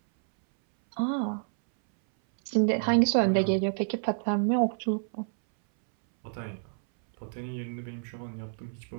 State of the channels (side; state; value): left; silent; 59 dB below the other